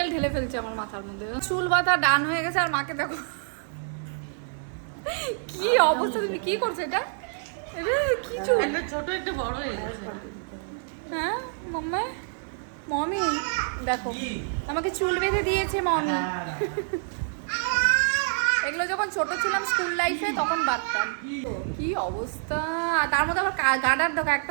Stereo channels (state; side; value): silent; left; digital silence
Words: ঢেলে ফেলছে আমার মাথার মধ্যে। চুল বাঁধা ডান হয়ে গেছে আর মাকে দেখো কি অবস্থা, তুমি কি করছো এটা? কি চুল, একটা ছোট একটা বড় হয়ে গেছে। হ্যাঁ মাম্মা, মমি দেখো আমাকে চুল বেঁধে দিয়েছে মমি। এগুলো যখন ছোট ছিলাম স্কুল লাইফে তখন বাঁধতাম। কি অবস্থা, তার মধ্যে আবার গাডার দেখো,